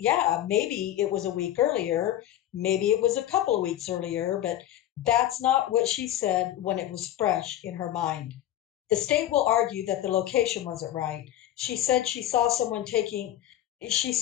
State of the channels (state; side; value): quieter; right; 12.7 dB